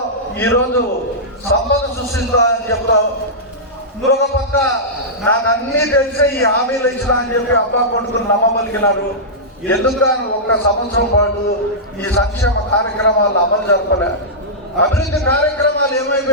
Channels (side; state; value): both; normal; correlation -0.13